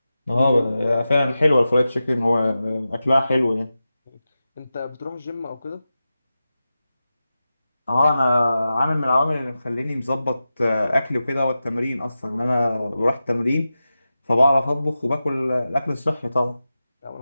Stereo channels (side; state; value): both; inverted; correlation -0.93